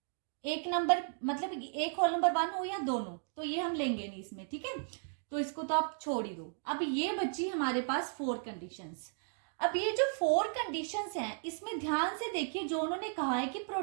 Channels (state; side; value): silent; left; digital silence